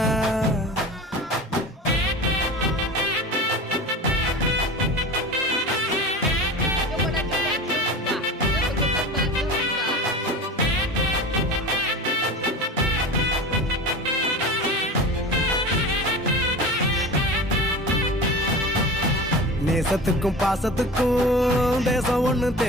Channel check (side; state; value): both; normal; correlation 0.32